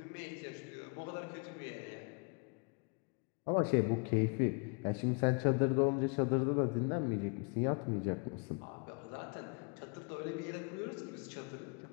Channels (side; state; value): right; quieter; 35.1 dB